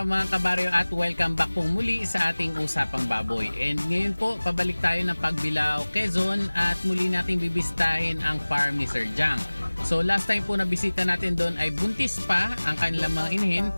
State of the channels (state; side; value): inverted; both; correlation -1.00